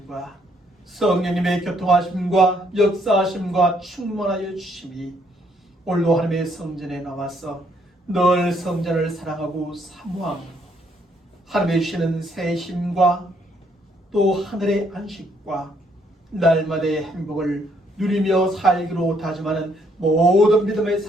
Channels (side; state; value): both; normal; correlation 0.70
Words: 성령님의 교통하심과 역사하심과 충만하여 주심이 오늘도 하나님의 성전에 나와서 늘 성전을 사랑하고 사모하고 하나님의 주시는 새 힘과 또 하늘의 안식과 날마다의 행복을 누리며 살기로 다짐하는 모든 믿음의